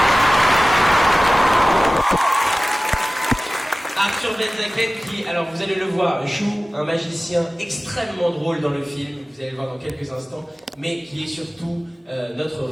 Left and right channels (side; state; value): both; normal; correlation 0.97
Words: Arthur Benzaken qui, alors vous allez le voir, joue un magicien extrêmement drôle dans le film, vous allez le voir dans quelques instants, mais qui est surtout notre